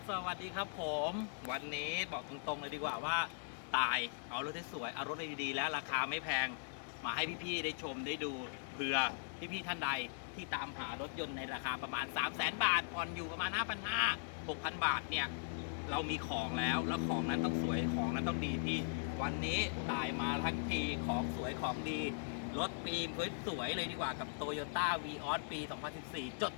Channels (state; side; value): silent; right; 51 dB below the other